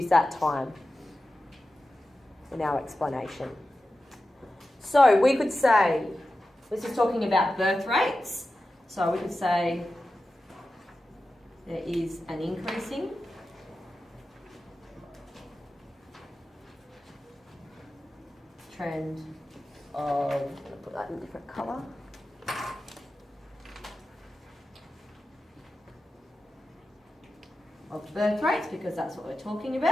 that time in our explanation. So we could say, this is talking about birth rates, so we could say there is an increasing trend of, I'm going to put that in a different colour. Of birth rates, because that's what we're talking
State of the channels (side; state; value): both; normal; correlation 0.93